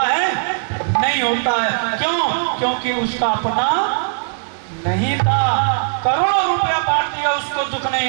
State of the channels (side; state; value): left; silent; digital silence